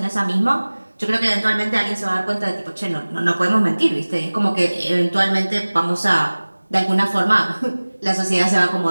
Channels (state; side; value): inverted; both; correlation -1.00